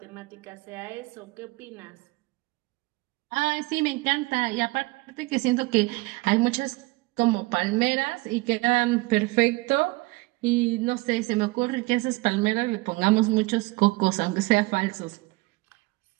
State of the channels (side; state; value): left; quieter; 23.1 dB